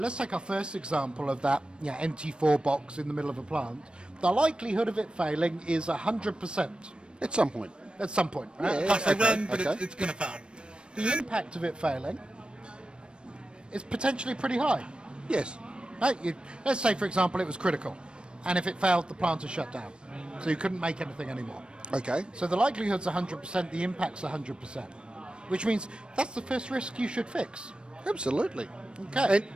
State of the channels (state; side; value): late; left; 0.055 ms